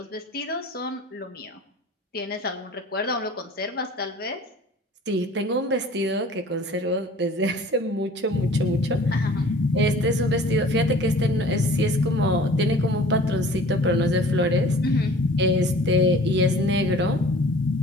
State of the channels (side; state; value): both; normal; correlation 0.48